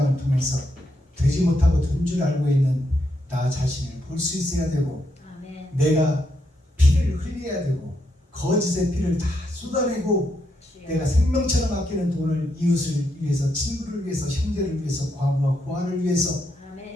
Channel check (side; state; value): both; normal; correlation 0.80